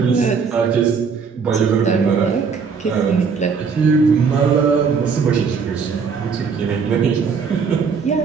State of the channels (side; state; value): left; quieter; 5.7 dB